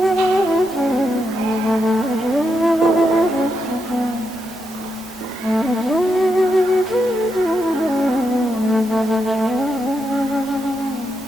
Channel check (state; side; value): normal; both; correlation 0.83